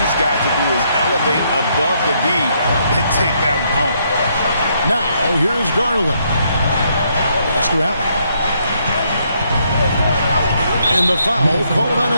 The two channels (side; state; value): both; inverted; correlation -0.73